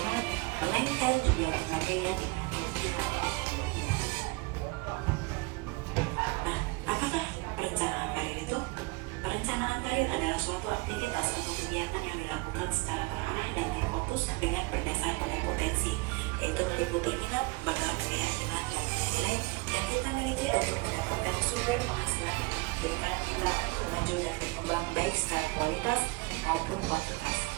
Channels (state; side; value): quieter; left; 25.6 dB